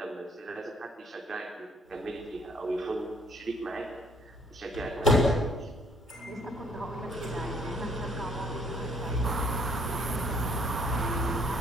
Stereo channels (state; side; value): normal; both; correlation 0.63